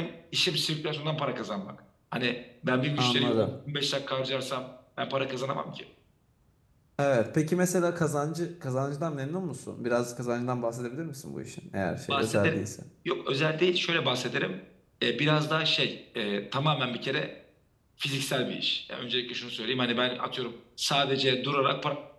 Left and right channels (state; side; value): identical; both; correlation 1.00